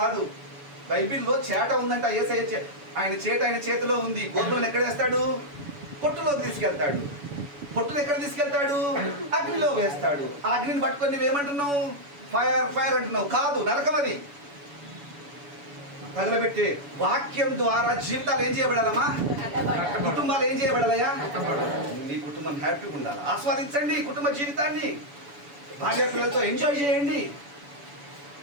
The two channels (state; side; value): late; left; 7.0 ms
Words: బైబిల్లో చేట ఉందంట. యేసయ్య ఆయన చేట ఆయన చేతిలో ఉంది. గోధుమలను ఎక్కడ వేస్తాడు? పొట్టులోకి తీసుకెళ్తాడు. పొట్టును ఎక్కడ తీసుకెళ్తాడు? అగ్నిలో వేస్తాడు. ఆ అగ్నిని పట్టుకొని నువ్వేమంటున్నావు? ఫైర్ ఫైర్ అంటున్నావు. కాదు, నరకం అది. తగలబెట్టే వాక్యం ద్వారా జీవితాలు ఏం చేయబడాలమ్మా? కుటుంబాలు ఏం చేయబడాలయా? నీ కుటుంబం హ్యాపీగా ఉండాలి. ఆస్వాదించండి కుటుంబ జీవితాన్ని. భార్య పిల్లలతో ఎంజాయ్ చేయండి.